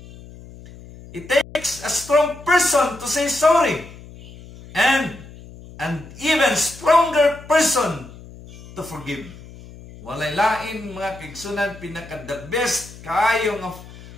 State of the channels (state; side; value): noise; left; hum, 18 dB below the sound